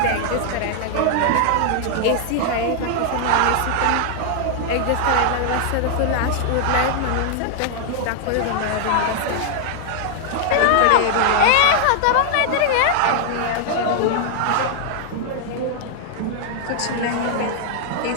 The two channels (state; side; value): different; both; correlation -0.01